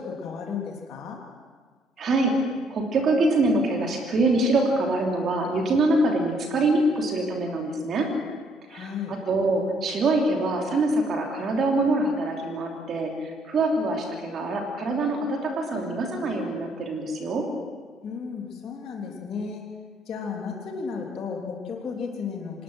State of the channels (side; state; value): both; normal; correlation 0.67